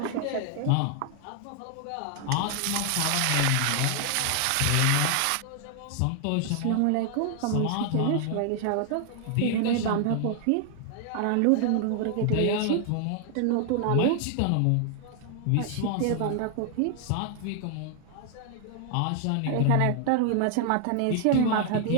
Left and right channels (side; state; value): both; different; correlation 0.00